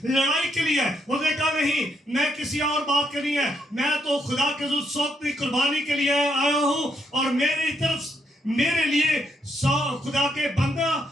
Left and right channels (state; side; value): normal; both; correlation 0.76